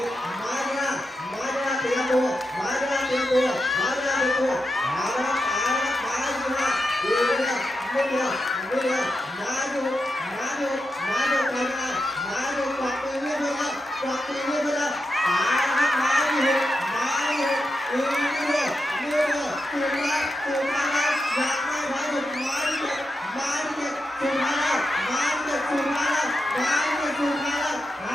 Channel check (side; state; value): both; normal; correlation 0.87